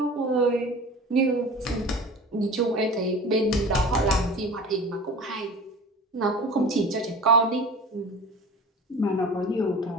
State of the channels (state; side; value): normal; both; correlation 0.37